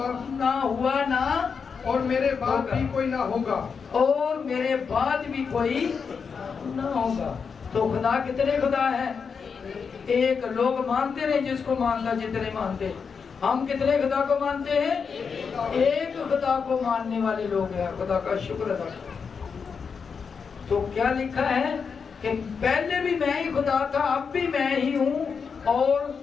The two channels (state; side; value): quieter; right; 5.9 dB